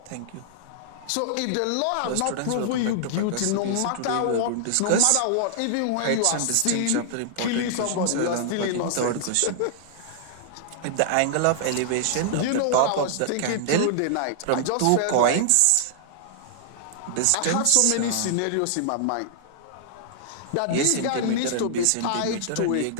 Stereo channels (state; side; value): different; both; correlation -0.01